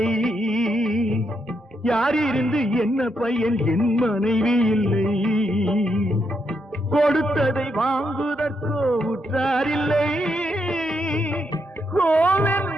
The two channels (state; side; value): normal; both; correlation 0.80